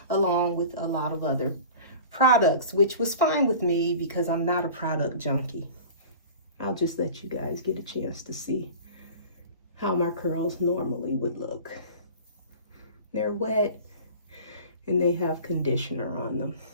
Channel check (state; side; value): inverted; both; correlation -0.39